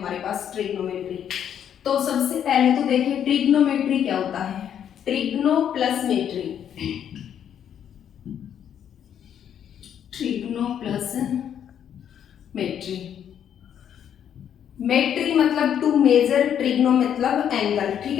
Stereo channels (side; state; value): right; quieter; 9.2 dB